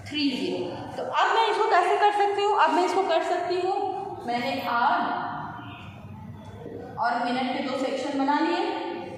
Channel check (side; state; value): both; identical; correlation 1.00